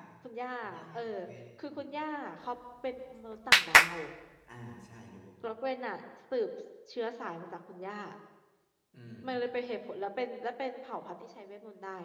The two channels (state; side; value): identical; both; correlation 1.00